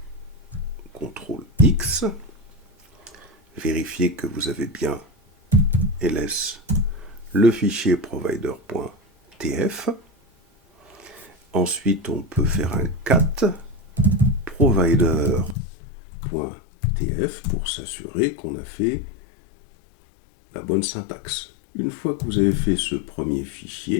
CTRL-X, vérifiez que vous avez bien ls le fichier provider.tf. Ensuite, on peut faire un cat provider.tf pour s'assurer qu'on a fait la bonne syntaxe. Une fois que vous avez fait ce premier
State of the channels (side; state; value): right; drops out; at 15.6 s